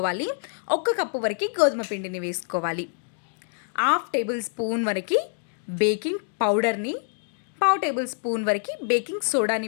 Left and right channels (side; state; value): right; silent; 56 dB below the other